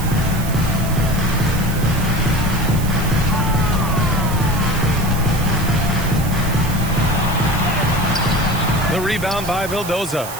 The rebound by Vildoza.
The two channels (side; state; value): right; noise; hiss, 11 dB below the sound